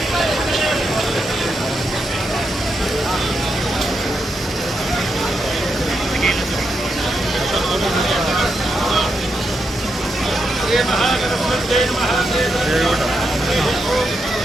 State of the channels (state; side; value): normal; both; correlation 0.83